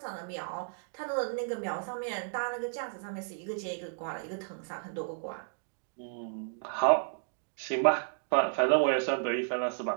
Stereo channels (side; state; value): left; silent; digital silence